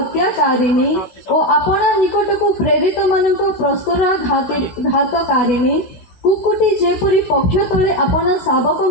ଓ ଆପଣା ନିକଟକୁ ପ୍ରେରିତ ମାନଙ୍କ ପ୍ରସ୍ତରା ଘାତକାରିଣୀ କୁକୁଟି ଯେପରି ପକ୍ଷ ତଳେ ଆପଣା ଶାବକ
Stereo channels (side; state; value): right; late; 16 ms